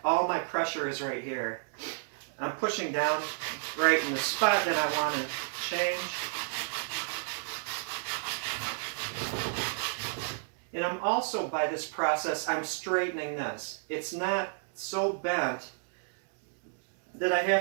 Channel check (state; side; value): silent; left; digital silence